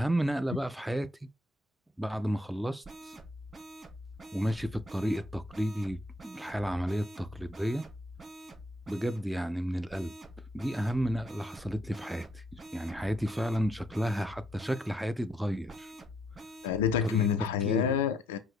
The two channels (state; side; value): normal; both; correlation 0.72